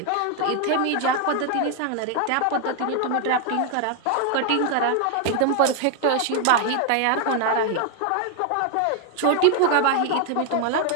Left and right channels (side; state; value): both; different; correlation 0.00